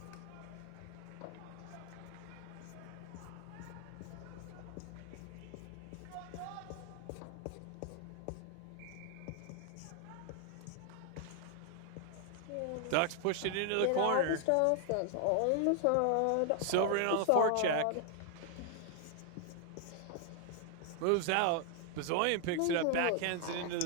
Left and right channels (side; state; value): both; different; correlation 0.00